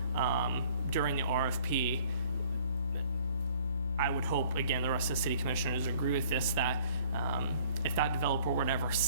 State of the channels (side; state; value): both; inverted; correlation -0.55